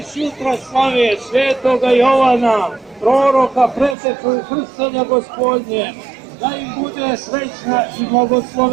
sutra slave svetoga Jovana, proroka, preteču krštenja Gospodnje, da im bude srećna i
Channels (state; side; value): drops out; left; at 4.0 s